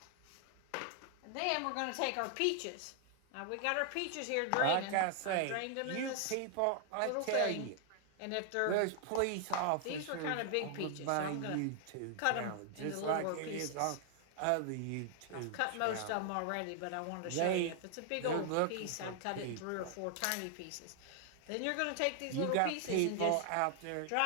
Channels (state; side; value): different; both; correlation 0.00